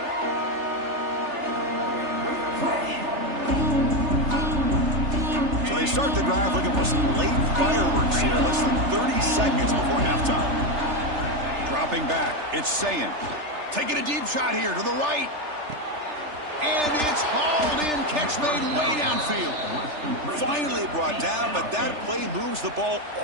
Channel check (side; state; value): left; late; 3.3 ms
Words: So they start the drive looking for some late fireworks here. Less than 30 seconds before halftime. Dropping back, it's Sayin. Taking a deep shot here to the right. And it's hauled in. Catch made way downfield. Finally brought down, but that play moves the ball